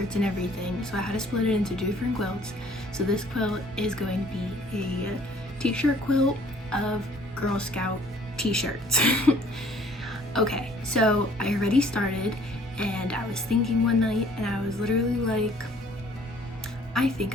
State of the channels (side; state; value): both; normal; correlation 0.57